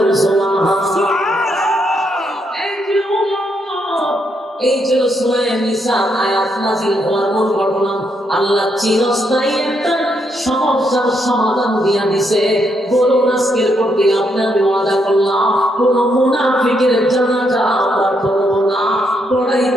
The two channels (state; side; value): normal; both; correlation 0.77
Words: সুবহানাল্লাহ। এই ছিল সূরা নিসা আয়াত নাযিল হওয়ার মূল ঘটনা। আল্লাহ চিরস্থায়ী একটা সমস্যার সমাধান দিয়া দিছে। বলুন আজকের পর থেকে আপনি আমি ওয়াদা করলাম কোন মুনাফিকের জানাজা আমরা করব না, পড়াইব